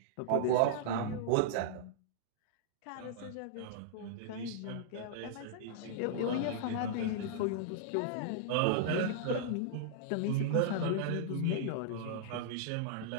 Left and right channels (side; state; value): both; different; correlation -0.02